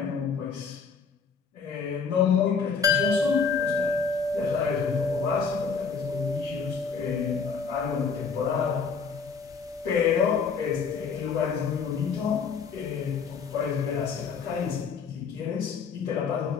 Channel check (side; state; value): right; quieter; 5.6 dB